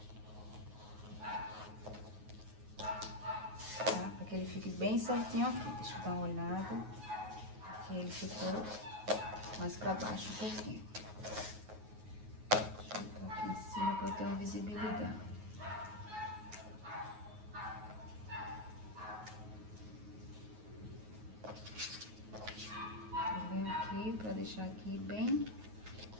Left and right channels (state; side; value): late; left; 9.4 ms